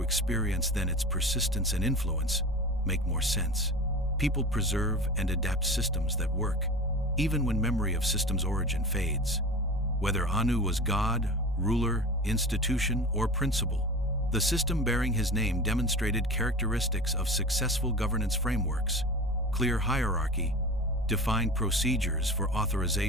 experience, then its persistence and influence make more sense. People preserve and adapt systems that work, even when memory of system's origin fades. Whether Anu was god, ruler, institution, or principle, the system bearing his name demonstrated characteristics of successful governance frameworks: clear hierarchy, defined procedures for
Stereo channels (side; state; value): both; normal; correlation 0.32